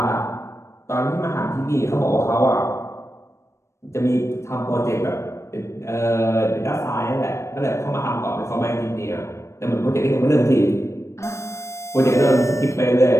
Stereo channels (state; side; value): late; right; 0.13 ms